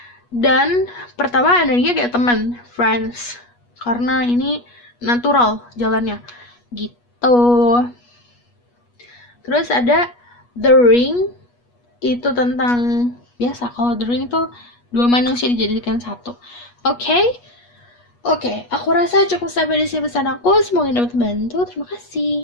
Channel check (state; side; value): late; right; 8.3 ms